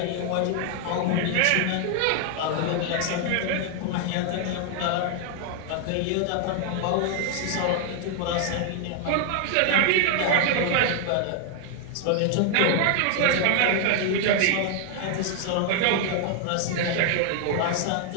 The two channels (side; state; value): both; different; correlation 0.00